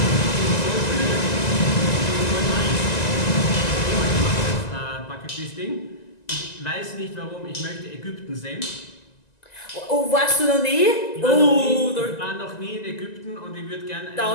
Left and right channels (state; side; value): late; right; 1.9 ms